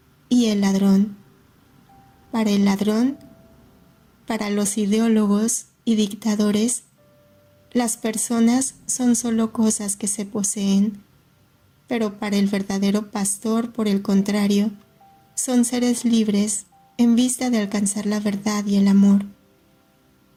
y el ladrón. Para el ladrón, para los ideólogos y dictadores, las personas son solo cosas que se poseen, pero para el verdadero pastor, por el contrario, son seres libres en vista de alcanzar la verdad y el amor.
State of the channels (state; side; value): identical; both; correlation 1.00